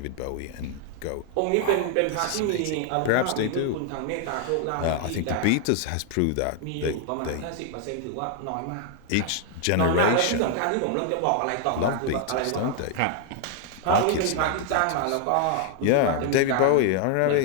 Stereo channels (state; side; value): different; both; correlation 0.00